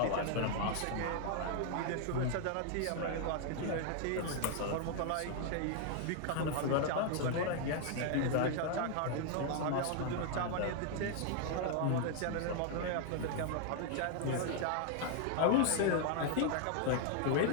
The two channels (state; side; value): different; both; correlation 0.00